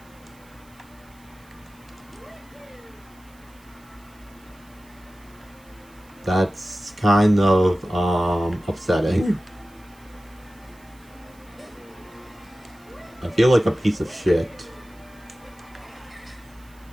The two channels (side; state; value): right; noise; hiss, 28 dB below the sound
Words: That's kind of upsetting. I feel like a piece of shit.